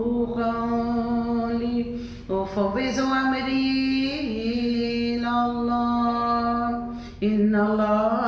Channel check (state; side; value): identical; both; correlation 1.00